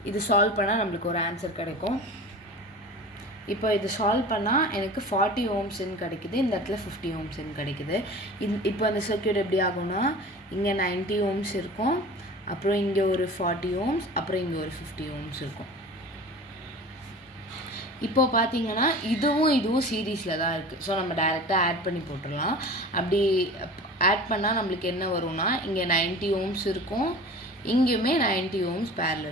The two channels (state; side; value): normal; both; correlation 0.37